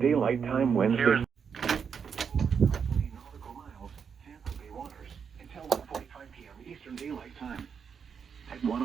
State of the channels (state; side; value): quieter; left; 6.7 dB